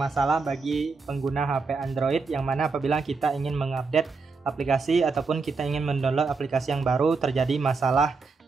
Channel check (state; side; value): quieter; left; 4.4 dB